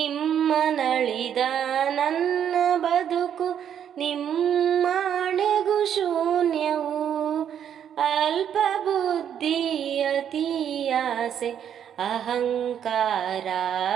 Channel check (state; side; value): quieter; left; 9.1 dB